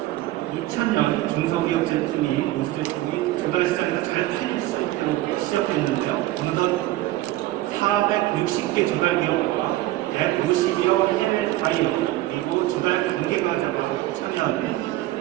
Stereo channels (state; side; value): quieter; left; 16.5 dB